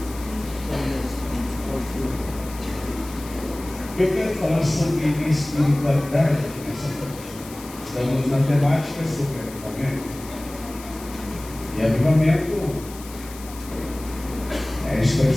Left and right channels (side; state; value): left; noise; hiss, 17 dB below the sound